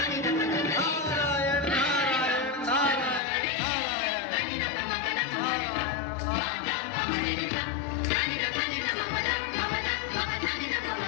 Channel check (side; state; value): right; drops out; at 3.2 s